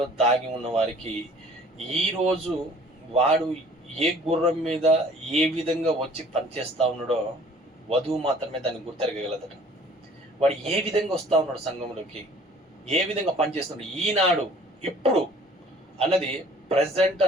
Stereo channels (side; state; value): both; normal; correlation 0.52